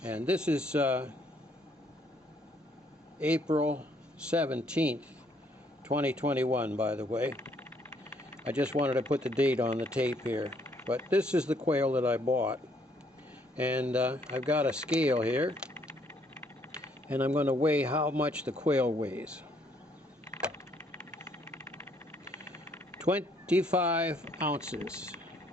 And this is April 17th, 2021, by the way. I just wanted to put the date on the tape here. But this is the quail that I bought. And I've got a scale here. And I'm going to weigh how much the quail weighs. 25 ounces.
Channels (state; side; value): normal; both; correlation 0.67